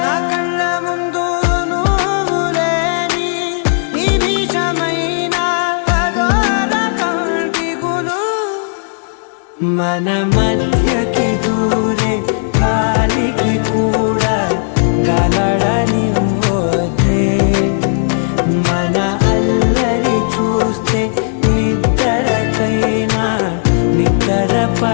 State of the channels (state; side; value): silent; right; digital silence